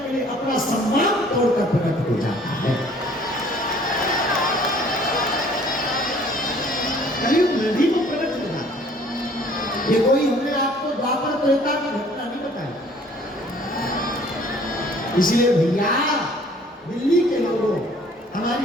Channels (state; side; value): normal; both; correlation 0.55